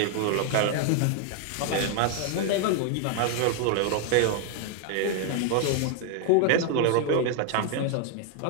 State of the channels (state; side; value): different; both; correlation 0.00